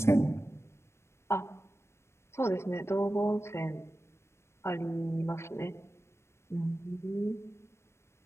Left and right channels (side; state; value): right; late; 0.13 ms